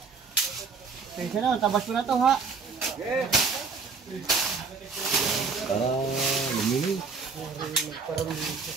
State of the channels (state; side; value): quieter; left; 5.0 dB